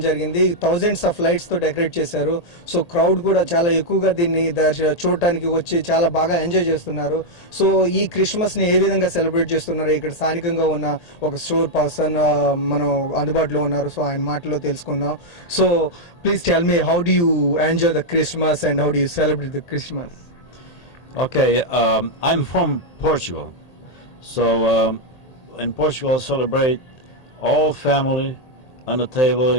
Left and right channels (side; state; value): right; late; 1.8 ms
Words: జరిగింది. థౌజండ్స్ ఆఫ్ లైట్స్ తో డెకరేట్ చేశారు. సో క్రౌడ్ కూడా చాలా ఎక్కువగా దీన్ని చూడటానికి వచ్చి చాలా బాగా ఎంజాయ్ చేస్తున్నారు. సో ఈ క్రిస్మస్ ని ఏ విధంగా సెలబ్రేట్ చేస్తున్నారు, ఇక్కడ స్థానికంగా ఉన్న ఒక స్టోర్ పర్సన్ మనం అందుబాటులో ఉన్నారు. సో ఆయన మాటలో తెలుసుకుందాం. So please tell me, how do you enjoy the Christmas and how do you celebrate the Christmas? Okay, I'm from Portugal, so in Portugal celebrate all family on the table,